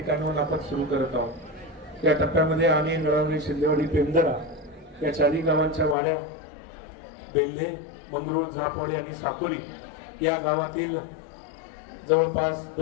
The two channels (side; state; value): right; drops out; at 6.0 s